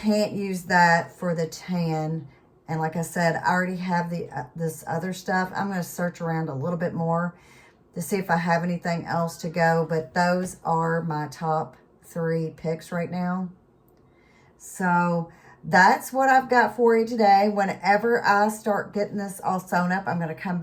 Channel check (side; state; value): both; identical; correlation 1.00